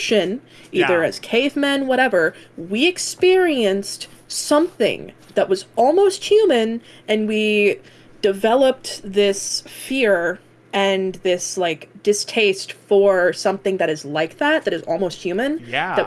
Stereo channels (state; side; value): identical; both; correlation 1.00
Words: either Yeah. as cavemen, whatever, we experienced something that was almost human, and we developed this fear and this like distaste for something that is like that is almost human, that Yeah.